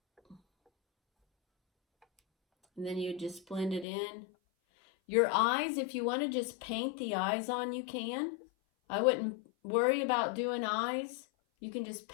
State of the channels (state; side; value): drops out; right; at 3.9 s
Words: And then you just blend it in. Your eyes, if you want to just paint the eyes on, you can. I wouldn't worry about doing eyes. You can just